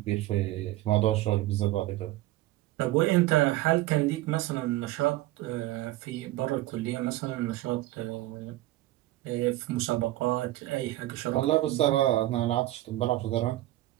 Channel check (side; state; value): left; quieter; 16.4 dB